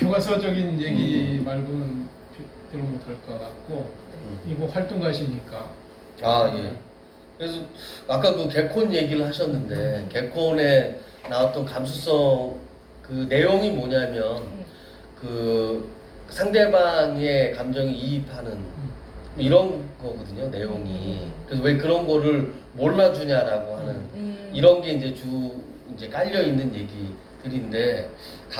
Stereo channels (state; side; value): identical; both; correlation 1.00